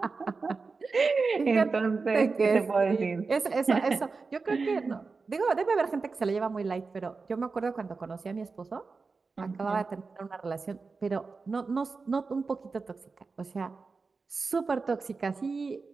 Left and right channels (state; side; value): quieter; left; 4.4 dB